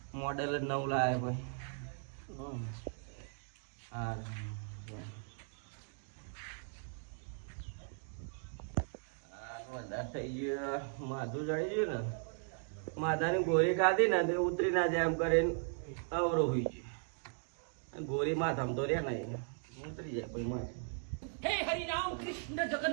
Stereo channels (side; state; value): left; silent; 53 dB below the other